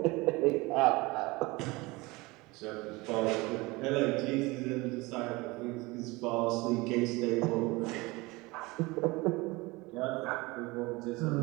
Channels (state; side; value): quieter; left; 23.1 dB